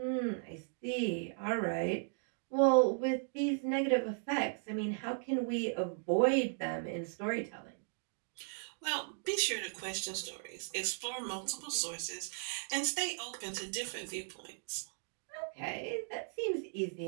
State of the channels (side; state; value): left; silent; digital silence